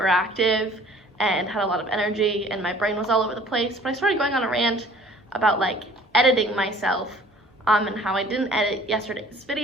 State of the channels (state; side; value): normal; both; correlation 0.51